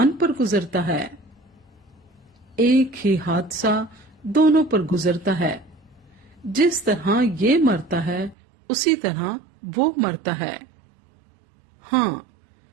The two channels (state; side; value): drops out; left; at 8.3 s